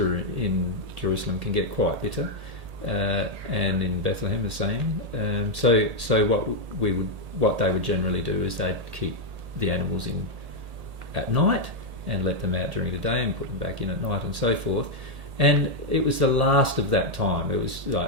in Jerusalem can get quite bitter, and in Bethlehem the same. So what they would generally do is they'd keep the animals in at night and let them out during the day and put them back in at night and so forth. And it was the last of that time. It was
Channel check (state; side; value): late; left; 1.8 ms